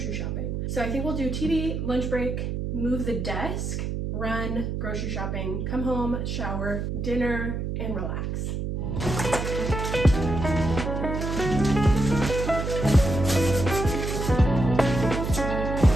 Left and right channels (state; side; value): noise; right; hum, 3 dB below the sound